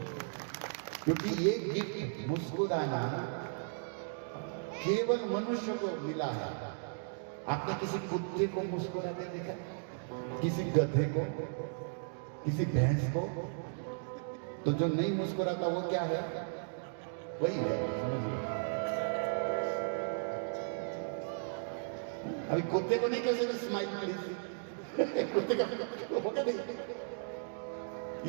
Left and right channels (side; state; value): left; silent; digital silence